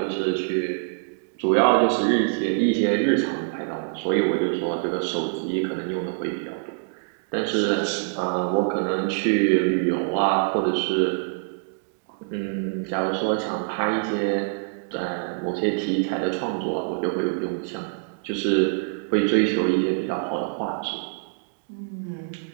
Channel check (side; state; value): left; silent; digital silence